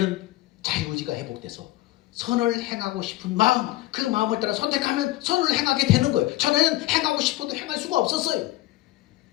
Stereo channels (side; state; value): right; quieter; 17.2 dB